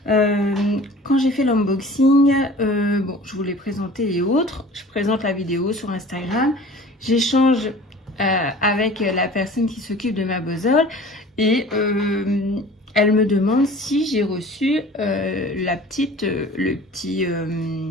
Quand j'ai fait l'unboxing, bon, je vous l'ai présenté et autres. Je présente la vidéo sur Instagram. J'échange avec la personne qui s'occupe de ma bozole et elle me demande si j'ai reçu le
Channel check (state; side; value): normal; both; correlation 0.44